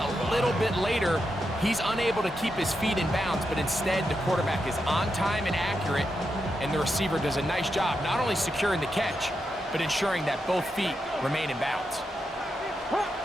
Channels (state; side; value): normal; both; correlation 0.85